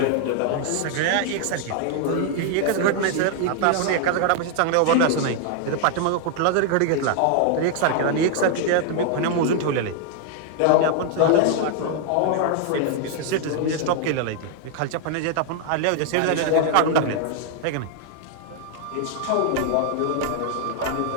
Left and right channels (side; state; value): both; different; correlation 0.00